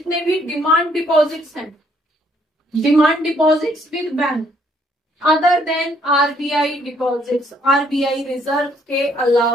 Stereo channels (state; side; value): normal; both; correlation 0.67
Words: भी डिमांड डिपॉजिट्स हैं, demand deposits with bank other than RBI deposits, RBI reserve के